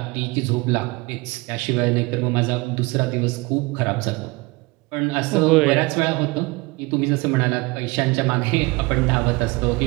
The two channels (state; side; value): quieter; left; 24.4 dB